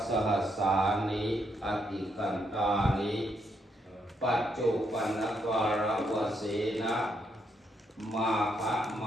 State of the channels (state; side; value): normal; both; correlation 0.76